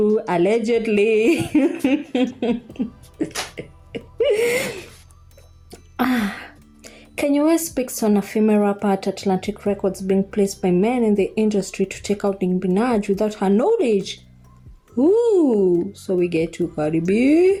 Allegedly. Kanye West speaks on a female rapper at Atlantic Records being placed by men in the industry to take out Nicki Minaj without her knowledge. Ooh, so we get to Cardi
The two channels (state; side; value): identical; both; correlation 1.00